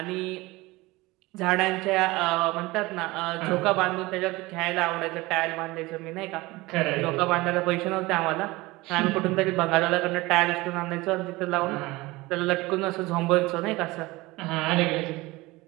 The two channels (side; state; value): left; quieter; 21.1 dB